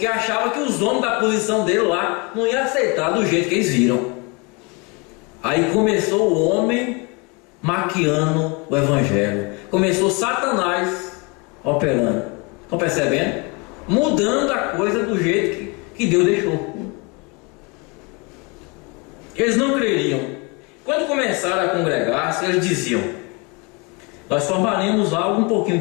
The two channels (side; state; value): right; quieter; 29.7 dB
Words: achavam que os homens da posição dele lá não iam aceitar do jeito que eles viram. Aí começou o homem maquiando o evangelho, começou Satanás operando. Estão percebendo? Mudando a coisa do jeito que Deus deixou. Eles não creriam. Quando começaram a congregar-se, eles diziam: nós formaremos algo um pouquinho